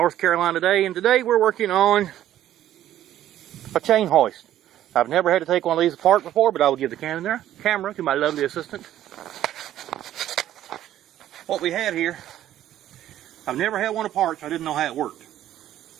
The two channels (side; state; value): left; quieter; 12.4 dB